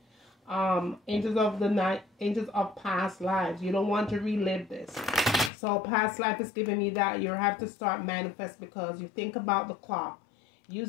Angels of the night, angels of past lives. You don't want to relive this. So past life is giving me that you have to start manifest, because you think about the clock.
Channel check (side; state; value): right; drops out; at 5.5 s